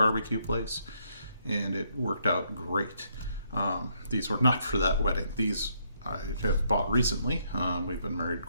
place. And it worked out great. These were not for that wedding. These I have bought recently. We've been married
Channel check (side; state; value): both; inverted; correlation -0.73